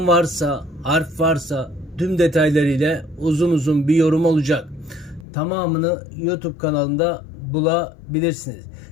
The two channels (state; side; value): drops out; right; at 5.2 s